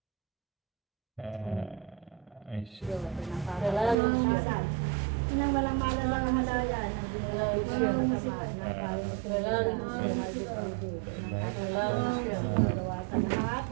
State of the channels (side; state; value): left; drops out; at 4.0 s